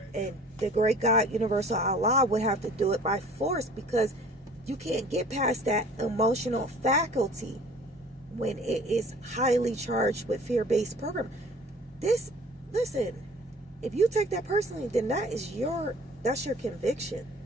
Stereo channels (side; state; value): both; normal; correlation 0.49